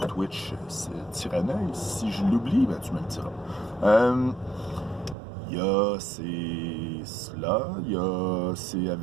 Twitch, c'est Tyranneuil. Si je l'oublie, tu me le diras. Il y a c'est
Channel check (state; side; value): drops out; left; at 5.2 s